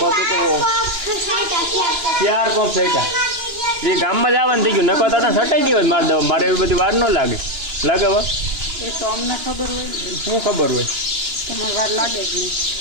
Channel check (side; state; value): left; late; 2.9 ms